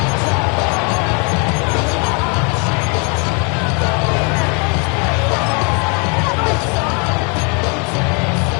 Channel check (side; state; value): right; quieter; 34.6 dB